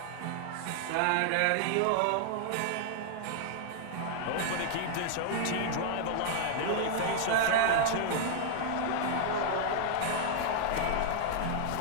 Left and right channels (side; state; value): both; different; correlation -0.01